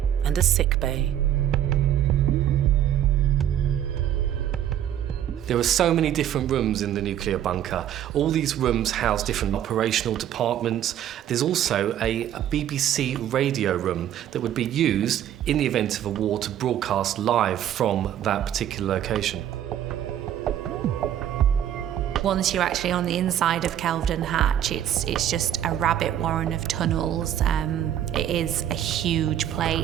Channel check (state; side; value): quieter; left; 10.8 dB